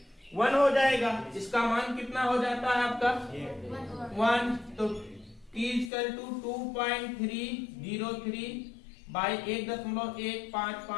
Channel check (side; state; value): right; drops out; at 5.9 s